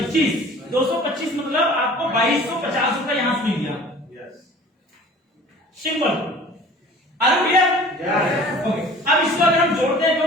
मतलब आपको 2250 रुपए यहां से मिल गया। Simple are clear okay. अब इसको अगर हम जोड़ते हैं तो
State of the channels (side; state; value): both; normal; correlation 0.46